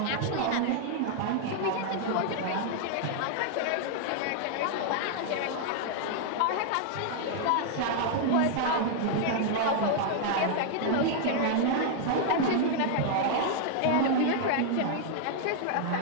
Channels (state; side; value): different; both; correlation 0.00